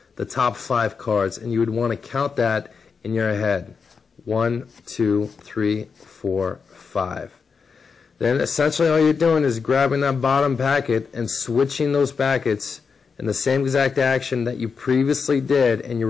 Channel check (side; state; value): right; quieter; 5.5 dB